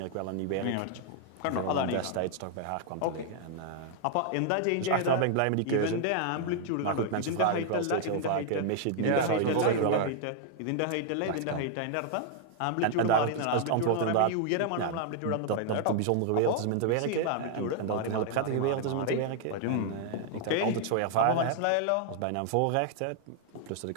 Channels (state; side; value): different; both; correlation 0.00